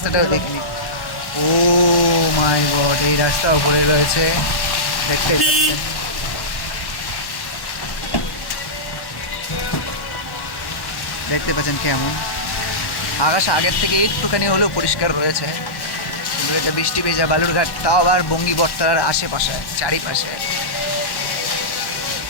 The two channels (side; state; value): right; late; 1.1 ms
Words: দেখিনি। ও মাই গড, এই রাস্তা উপরে রয়েছে, দেখতে পাচ্ছেন। দেখতে পাচ্ছেন কেমন আকাশ আগের থেকে একটুখানি হলেও পরিষ্কার রয়েছে, কিন্তু এটা বৃষ্টি ভেজা বালুরঘাট, তাও আবার বঙ্গী বটতলার আশেপাশে চারিপাশে।